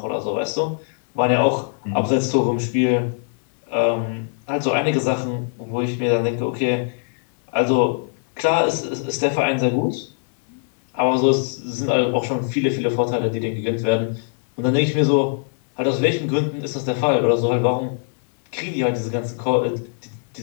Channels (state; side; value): silent; right; 61 dB below the other